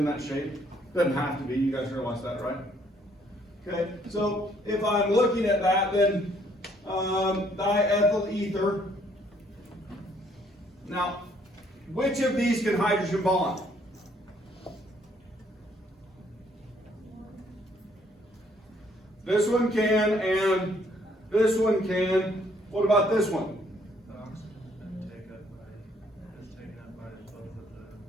that shape. Doesn't have to be, you guys realize that, right? Okay, so if I'm looking at that, then diethyl ether. Now, which of these can hydrogen bond? This one can, and this one can. What about this one? The oxygen's been taken up by both of the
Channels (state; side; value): normal; both; correlation 0.66